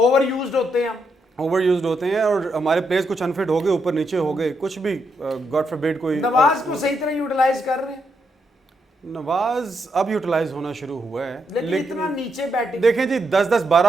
यूज्ड होते हैं हम, ओवर यूज्ड होते हैं, और हमारे प्लेयर्स कुछ अनफिट हो गए, ऊपर नीचे हो गए, कुछ भी गॉड फॉरबिड कोई। नवाज को सही तरह यूटिलाइज कर रहे हैं? नवाज अब यूटिलाइज होना शुरू हुआ है, लेकिन इतना नीचे बैटिंग। देखें जी, 10-10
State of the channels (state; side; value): normal; both; correlation 0.80